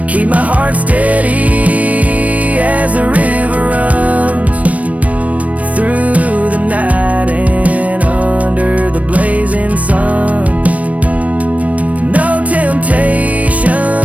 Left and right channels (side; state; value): left; late; 0.068 ms